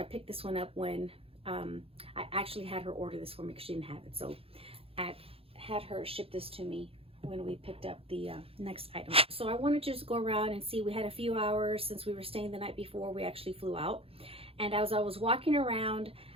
picked this one up when I actually had her order this for me, because she didn't have it. So I had her ship this to me when we picked up the next item. So I wanted to just go around and see. We had a few hours since we were staying the night before we actually flew out. And as I was walking around,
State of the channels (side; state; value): left; late; 0.27 ms